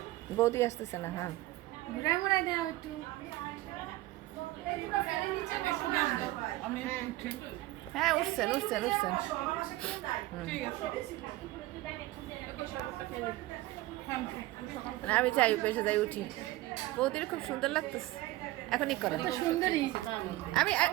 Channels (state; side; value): quieter; left; 17.7 dB